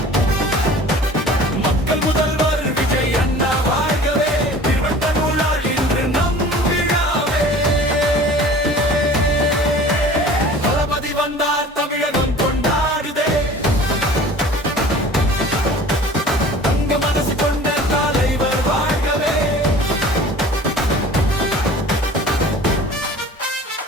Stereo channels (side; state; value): both; normal; correlation 0.44